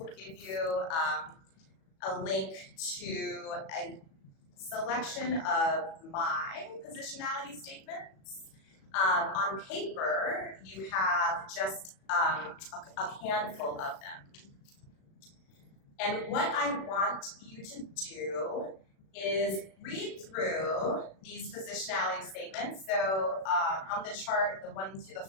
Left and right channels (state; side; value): late; right; 37 ms